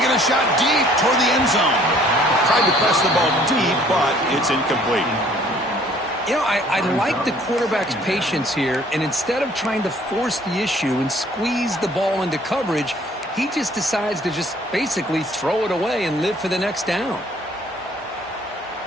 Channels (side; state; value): both; normal; correlation 0.57